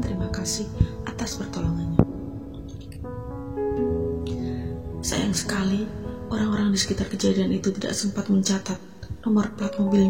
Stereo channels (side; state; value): both; identical; correlation 1.00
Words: kasih atas pertolongannya. Sayang sekali, orang-orang di sekitar kejadian itu tidak sempat mencatat nomor plat